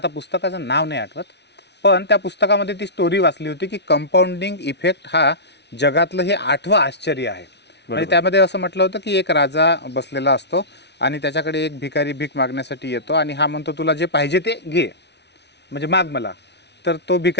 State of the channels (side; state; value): right; late; 0.50 ms